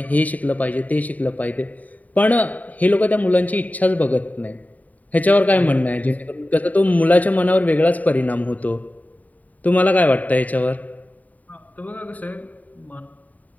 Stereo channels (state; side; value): late; right; 0.074 ms